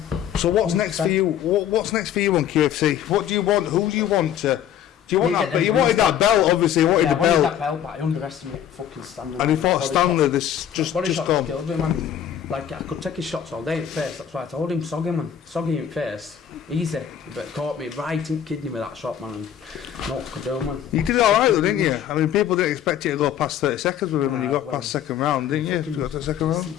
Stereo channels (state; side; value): quieter; right; 9.7 dB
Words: So what's next for you? What's next for you on QFC? What do you want? Who do you want to... Do you want You that? get But them you wanted wins, that belt, obviously. You wanted Yeah, the I wanted belt. that belt, but I underestimated fucking Stanley. And he fought Stanley. This just Body shot gone. killed me, man. Like I could take his shots all day in face. That's why I told him, sog him, man. Sog him in face. Easy. But he caught me right in kidney with that shot, man. And what could do, man. You did all right though, didn't you? I mean, people didn't expect you to go past 30 seconds with him when you got well, past second round, didn't you? You got to the second round.